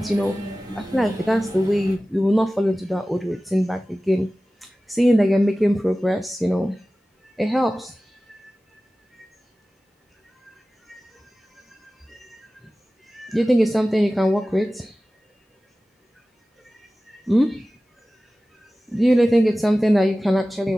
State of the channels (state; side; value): normal; both; correlation 0.96